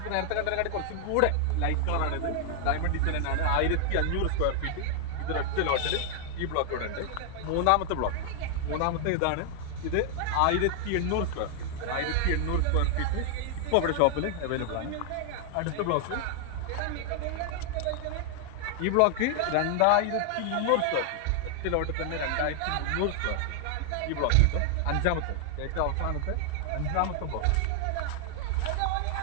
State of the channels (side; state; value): both; different; correlation 0.00